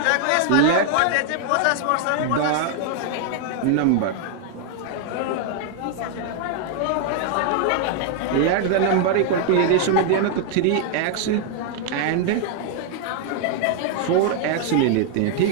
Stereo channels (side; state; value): both; different; correlation 0.00